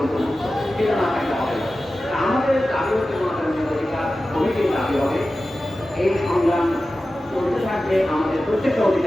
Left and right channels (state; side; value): normal; both; correlation 0.94